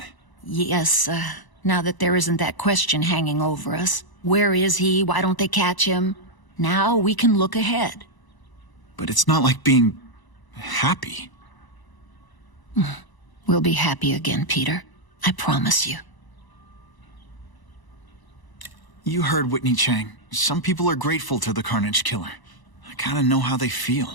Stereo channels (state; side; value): late; right; 1.0 ms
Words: Yes, now that there isn't that question hanging over us. Where is he? Why don't they catch him? Now we can look ahead. But it's not like being happy. We'll be happy again, Peter. I promise you. You heard Whitney Chang. Some people are grateful to the Carnage Killer. I kinda know how they